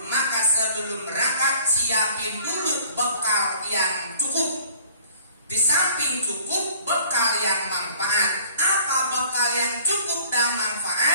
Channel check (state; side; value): inverted; both; correlation -0.53